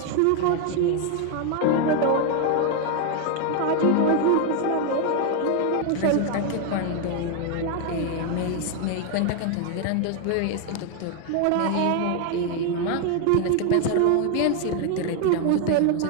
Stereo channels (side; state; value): both; different; correlation 0.01